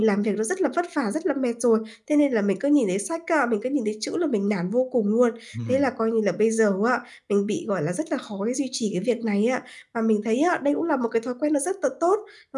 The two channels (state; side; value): identical; both; correlation 1.00